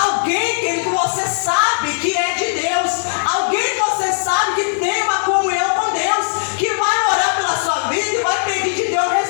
que você sabe que é de Deus, alguém que você sabe que tem uma comunhão com Deus, que vai orar pela sua vida e vai pedir de Deus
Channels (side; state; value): right; silent; 64 dB below the other